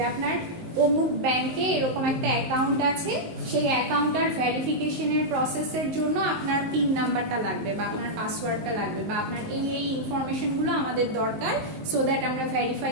আপনার অমুক ব্যাংকে এরকম একটা অ্যাকাউন্ট আছে, সেই অ্যাকাউন্টটার ভেরিফিকেশনের প্রসেসের জন্য আপনার পিন নাম্বারটা লাগবে বা আপনার পাসওয়ার্ডটা লাগবে বা আপনার এই ইনফরমেশনগুলো আমাদের দরকার, সো দ্যাট আমরা ভেরিফাই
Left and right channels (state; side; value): late; left; 19 ms